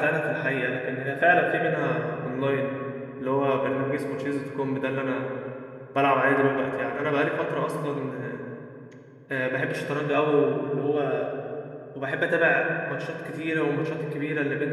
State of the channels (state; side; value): identical; both; correlation 1.00